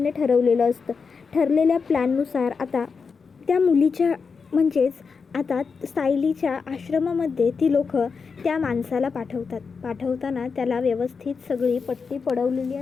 ठरवलेलं असतं. ठरलेल्या प्लॅननुसार आता त्या मुलीच्या म्हणजेच आता सायलीच्या आश्रमामध्ये ती लोक त्या माणसाला पाठवतात. पाठवताना त्याला व्यवस्थित सगळी पट्टी पडवलेली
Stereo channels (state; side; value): quieter; right; 5.3 dB